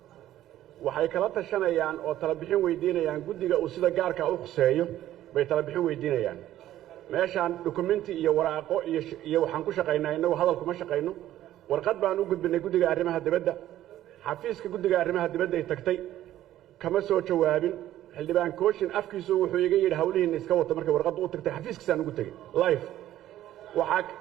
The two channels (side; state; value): left; quieter; 13.2 dB